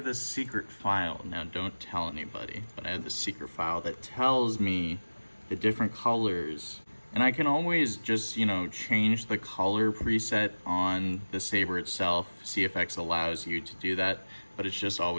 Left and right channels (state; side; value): inverted; both; correlation -1.00